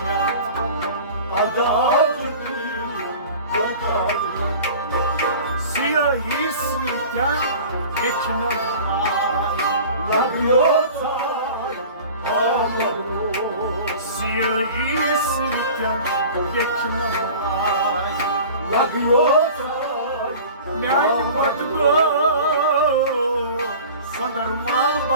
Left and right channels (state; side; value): inverted; both; correlation -0.41